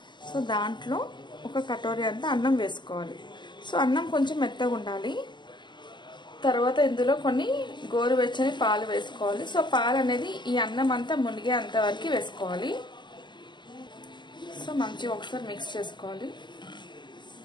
సో దాంట్లో ఒక కటోరీ అంతా అన్నం వేసుకోవాలి. సో అన్నం కొంచెం మెత్తగా ఉండాలి. తర్వాత ఇందులో కొన్ని గోరువెచ్చని పాలు వేసుకోవాలి. సో పాలు అనేది ఈ అన్నం అంతా మునిగే అంతవరకు వేసుకోవాలి. సో మంచిగా ఒకసారి మిక్స్ చేసుకోవాలి.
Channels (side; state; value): right; late; 0.22 ms